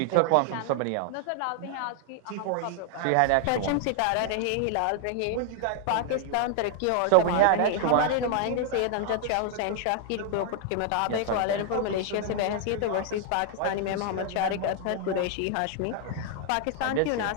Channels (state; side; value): different; both; correlation 0.00